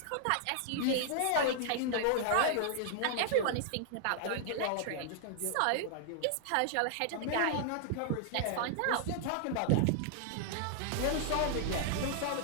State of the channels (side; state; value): both; different; correlation -0.01